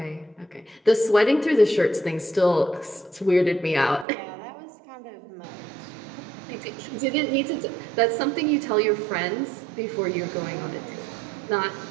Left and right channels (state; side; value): drops out; left; at 4.0 s